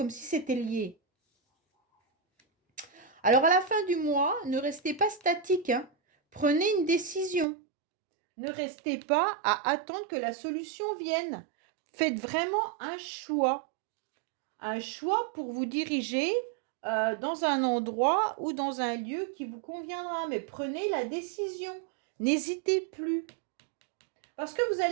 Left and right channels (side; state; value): left; drops out; at 7.5 s